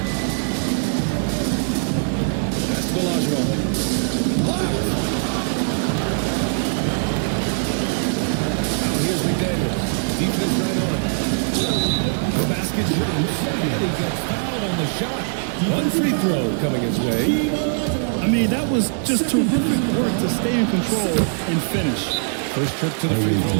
That's Olajuwon. Blocked. Now here's McDaniels. Defense right on it. The basket shoots. And he gets fouled on the shot. 1 free throw coming his way. I mean, that was just terrific work to stay in control and finish. First trip to the free throw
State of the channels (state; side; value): silent; left; digital silence